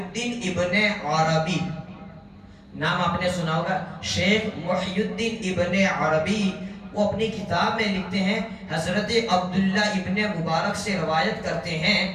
ابن عربی، نام آپ نے سنا ہوگا، شیخ محی الدین ابن عربی، وہ اپنی کتاب میں لکھتے ہیں، حضرت عبداللہ ابن مبارک سے روایت کرتے ہیں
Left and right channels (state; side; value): identical; both; correlation 1.00